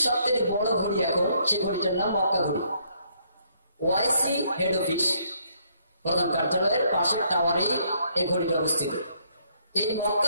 সব থেকে বড় ঘড়ি এখন, সেই ঘড়িটার নাম মক্কা ঘড়ি। ওআইসি হেড অফিস, প্রধান কার্যালয়ের পাশের টাওয়ারেই এই ঘড়িটা অবস্থিত। এই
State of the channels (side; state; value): both; inverted; correlation -0.69